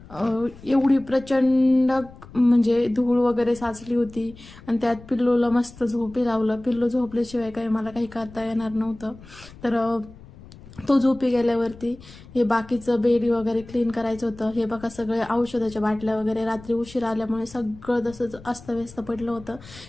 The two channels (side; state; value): left; noise; rumble, 19 dB below the sound